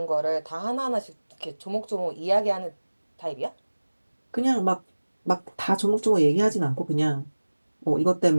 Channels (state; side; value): inverted; both; correlation -1.00